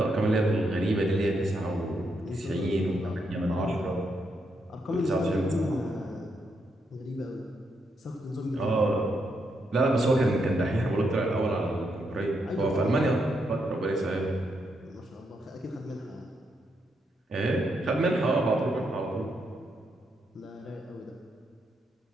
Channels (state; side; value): normal; both; correlation 0.80